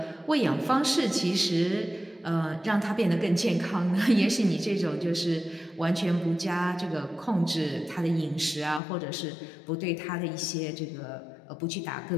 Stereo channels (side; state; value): right; drops out; at 8.8 s